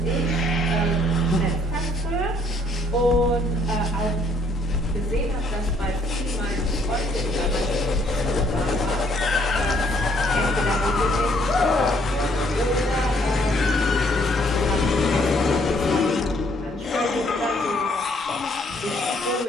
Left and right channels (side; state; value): both; normal; correlation 0.65